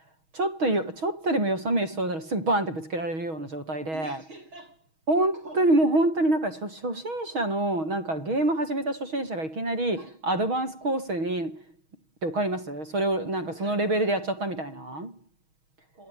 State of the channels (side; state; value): left; late; 6.3 ms